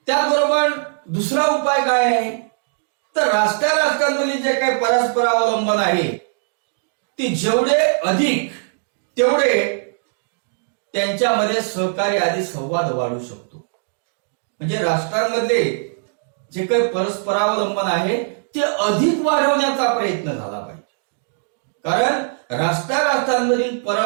त्याचबरोबर दुसरा उपाय काय आहे तर राष्ट्रांमधील जे काही परस्पर अवलंबन आहे ते जेवढे अधिक तेवढे त्यांच्यामध्ये सहकार्य आदी संवाद वाढू शकतो. म्हणजे राष्ट्रांमध्ये जे काही परस्परावलंबन आहे ते अधिक वाढवण्याचा प्रयत्न झाला पाहिजे. कारण राष्ट्रांमधील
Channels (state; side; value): silent; left; digital silence